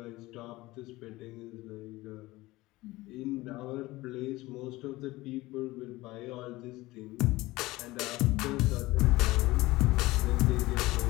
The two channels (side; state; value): right; quieter; 19.3 dB